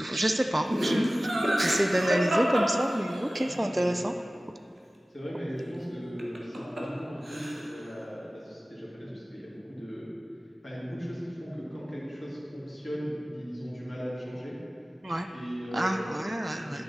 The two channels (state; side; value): normal; both; correlation 0.97